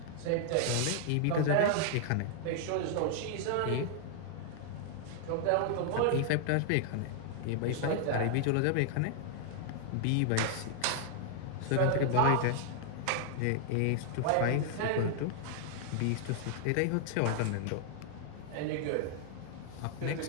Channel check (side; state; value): both; different; correlation 0.00